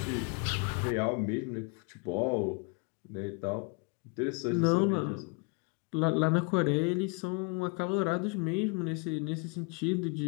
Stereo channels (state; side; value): quieter; right; 33.2 dB